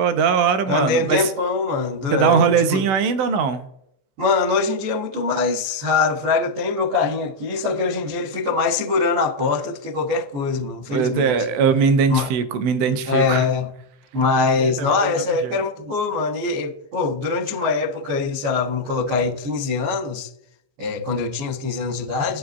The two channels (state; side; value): late; left; 14 ms